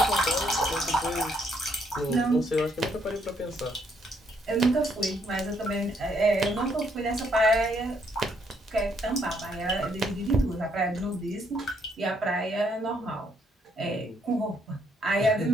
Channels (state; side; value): normal; both; correlation 0.71